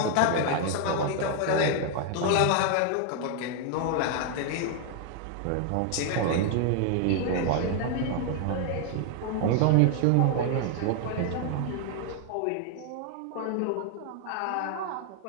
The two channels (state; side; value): different; both; correlation 0.00